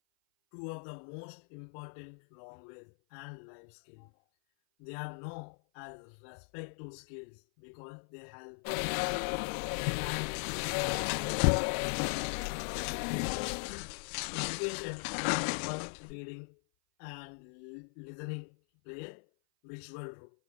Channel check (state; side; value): silent; right; 52 dB below the other